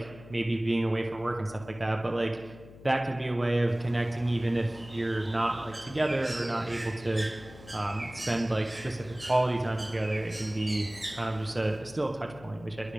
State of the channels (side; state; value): left; noise; hum, 18 dB below the sound